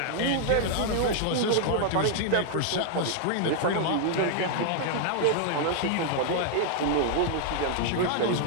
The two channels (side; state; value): both; different; correlation -0.01